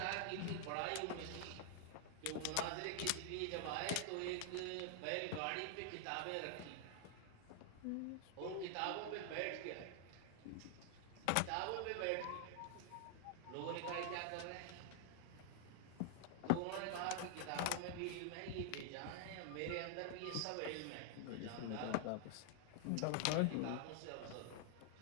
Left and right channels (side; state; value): both; different; correlation 0.00